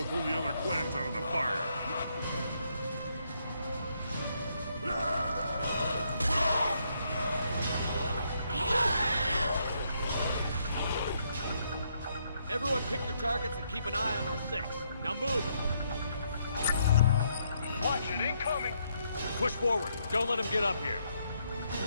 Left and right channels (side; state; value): both; inverted; correlation -0.74